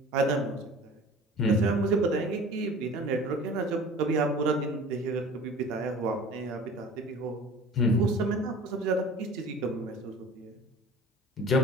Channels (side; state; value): both; normal; correlation 0.43